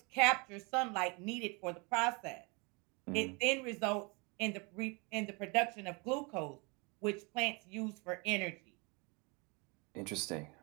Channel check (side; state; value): left; quieter; 30.1 dB